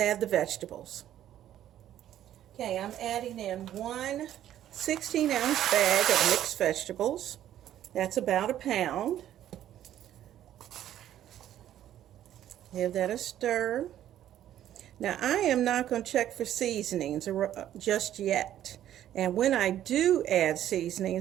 the vegetables. Okay, I'm adding in 1 16-ounce bag of mixed vegetables. That's about a pound. Give that a stir. Now, I am not going to check for seasonings just yet. And when I do add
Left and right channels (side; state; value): left; quieter; 11.7 dB